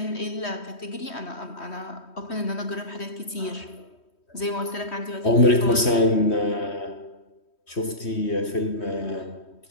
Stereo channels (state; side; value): late; right; 3.1 ms